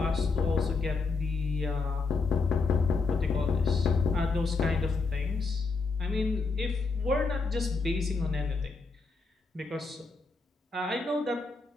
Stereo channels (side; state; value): right; quieter; 4.2 dB